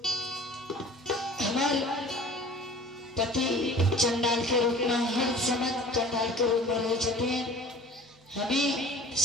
हमारे पति चंडाल के रूप में हर समय चंडाल के रूप में रहे जाते हमें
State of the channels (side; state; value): both; normal; correlation 0.46